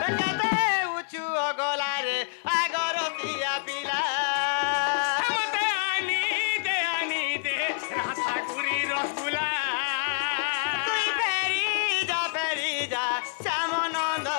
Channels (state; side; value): silent; right; digital silence